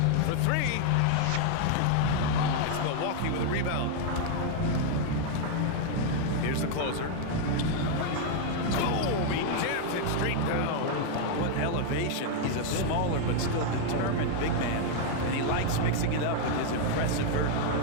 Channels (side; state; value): both; different; correlation 0.00